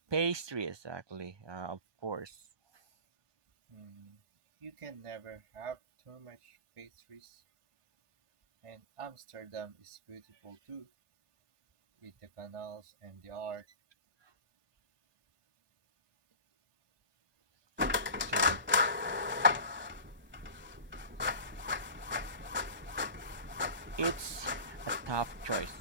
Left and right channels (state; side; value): late; left; 1.1 ms